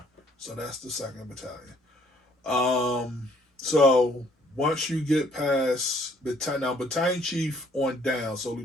So that's the 2nd battalion. So once you get past battalion chief on down, so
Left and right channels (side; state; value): both; normal; correlation 0.62